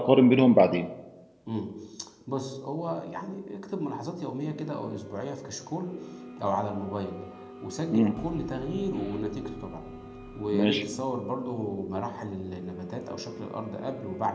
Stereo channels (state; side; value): identical; both; correlation 1.00